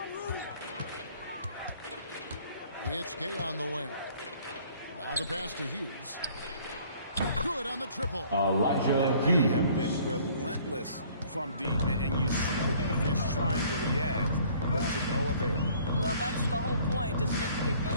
It's Gay on the wing. Now the pass to Hughes. Good on the triple. Elijah They have been relentless from deep, and you see the defense trying to react, but to no avail. Well, that's the whole point, isn't it? If you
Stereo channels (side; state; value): both; inverted; correlation -0.56